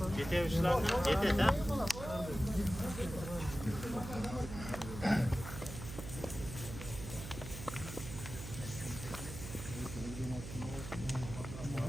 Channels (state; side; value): noise; right; hum, 9 dB below the sound